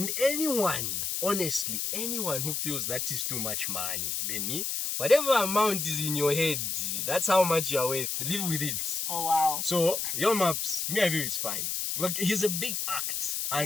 anyone, honestly, anyone who feels that is too much money, then whatever amount is in your head, that's how much you're worth. Live with it. Oh, wow. So, your maps, me, I feel it's fine. Look, he's a big act.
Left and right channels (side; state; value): left; noise; hiss, 1 dB below the sound